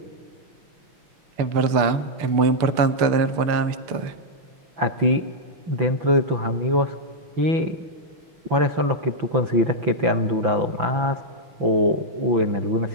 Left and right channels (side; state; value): left; late; 6.7 ms